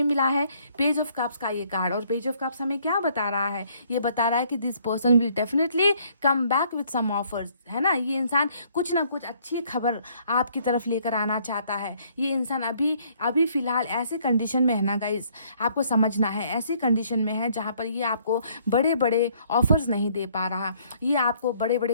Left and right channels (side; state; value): both; inverted; correlation -0.64